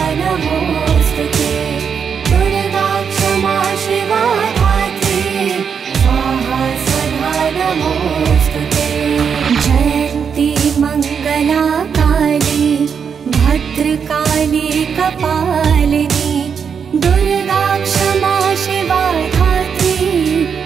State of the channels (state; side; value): quieter; left; 6.8 dB